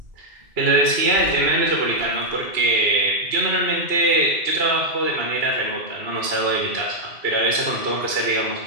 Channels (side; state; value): left; late; 2.8 ms